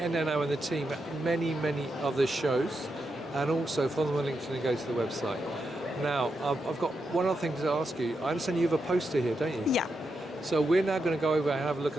and the team at many, many other shows, and also follow them on LinkedIn and go to the website. Now, I've got one other thing to ask you. I understand you have a poster here, don't you? Yeah. So we're now going to go over and have a look at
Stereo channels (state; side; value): normal; both; correlation 0.85